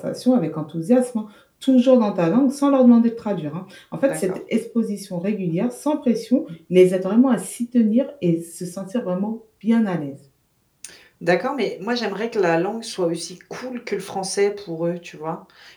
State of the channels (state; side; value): identical; both; correlation 1.00